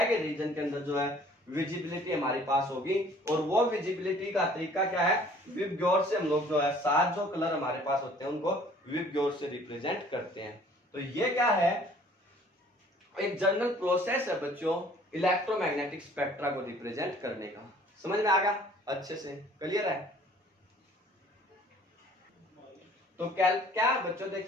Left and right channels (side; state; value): both; normal; correlation 0.54